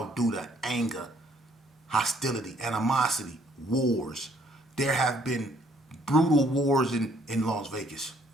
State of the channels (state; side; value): normal; both; correlation 0.64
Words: due to anger, hostility, animosity, wars. There have been brutal wars in Las Vegas.